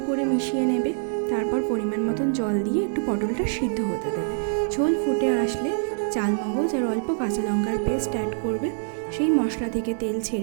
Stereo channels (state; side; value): silent; left; digital silence